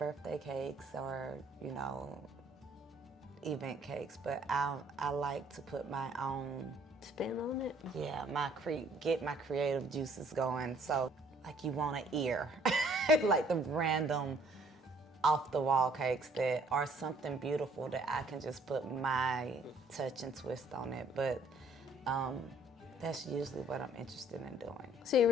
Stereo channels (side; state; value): both; normal; correlation 0.61